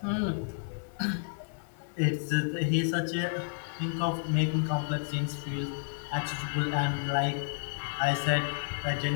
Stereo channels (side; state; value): right; silent; digital silence